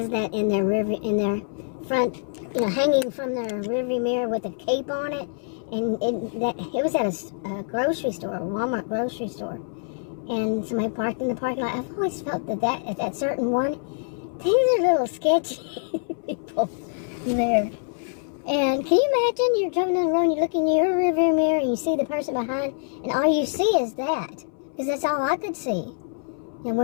that in their front, hanging from their rearview mirror with a cape on it, and it was at a grocery store, a Walmart grocery store, and somebody parked in the parking lot. I've always felt that at that certain one, things are a little sketchy people there. And can you imagine you're driving down the road and you look in your rearview mirror and you see the person behind, and all you see is that, because that's all I could see. And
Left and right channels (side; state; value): right; silent; 61 dB below the other